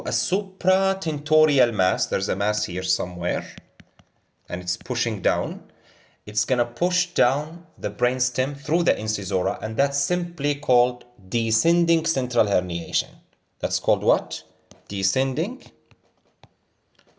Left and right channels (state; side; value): identical; both; correlation 1.00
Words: a supratentorial mass, there's a mass here somewhere, and it's pushing down, it's gonna push down the brainstem through the incisora, and that's simply called descending central herniation. That's called what? Descending